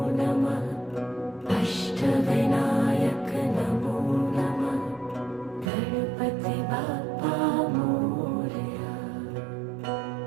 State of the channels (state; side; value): drops out; left; at 5.7 s